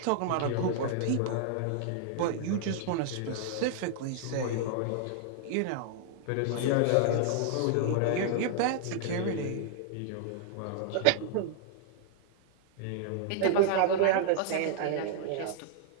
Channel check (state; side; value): different; both; correlation -0.01